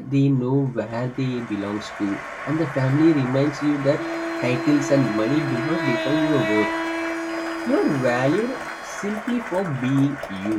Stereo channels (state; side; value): identical; both; correlation 1.00